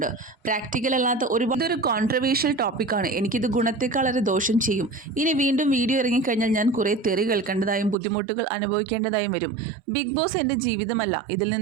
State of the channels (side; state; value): left; drops out; at 8.0 s